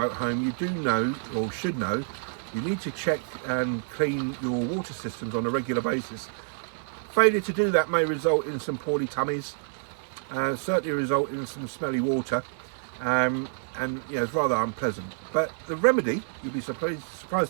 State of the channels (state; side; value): silent; left; 59 dB below the other